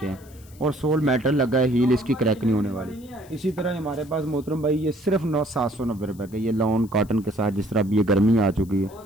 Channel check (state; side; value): noise; left; hiss, 25 dB below the sound